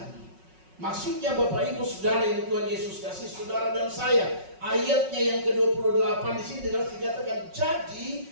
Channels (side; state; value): left; late; 5.4 ms